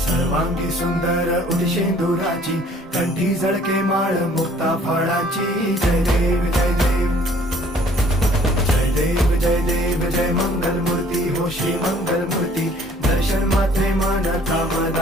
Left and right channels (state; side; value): normal; both; correlation 0.56